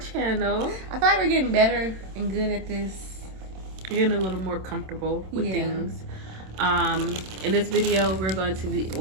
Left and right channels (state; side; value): late; left; 27 ms